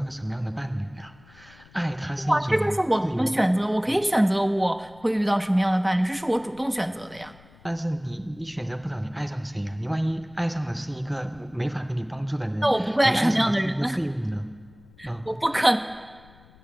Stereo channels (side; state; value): left; noise; rumble, 25 dB below the sound